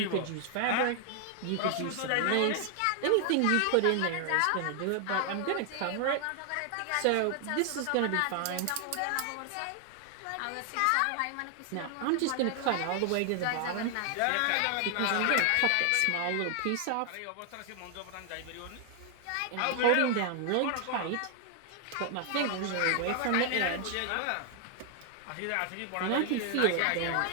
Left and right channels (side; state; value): both; different; correlation 0.00